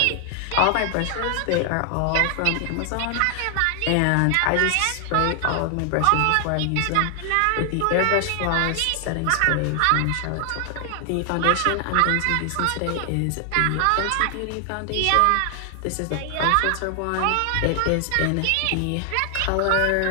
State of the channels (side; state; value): both; different; correlation 0.00